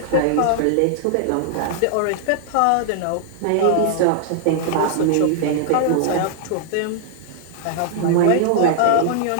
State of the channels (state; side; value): different; both; correlation -0.01